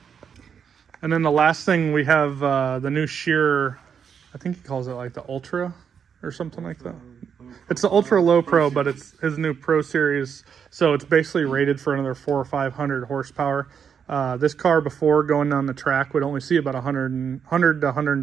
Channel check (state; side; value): quieter; left; 7.2 dB